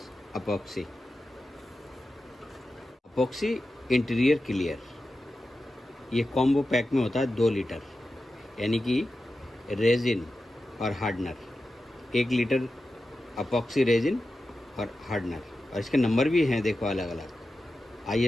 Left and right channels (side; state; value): both; normal; correlation 0.92